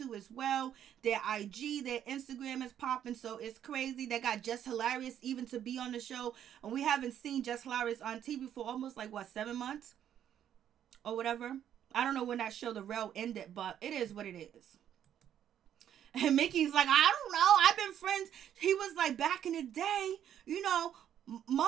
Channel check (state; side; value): quieter; left; 10.1 dB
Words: as well. Their IG, their Instagram is popping, so it's crazy. They got Just Hilarious even to be on the show, and we haven't seen Just Hilarious on TV for almost like 7 months or whatever. I don't know when that show The Real ended, but it is what it is. And Mickey's like, I don't know. I've been friends. He was like, back in the day, you know,